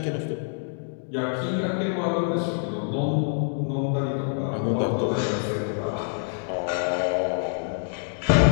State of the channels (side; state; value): right; silent; digital silence